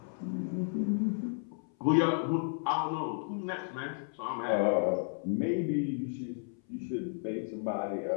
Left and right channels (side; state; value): right; silent; 56 dB below the other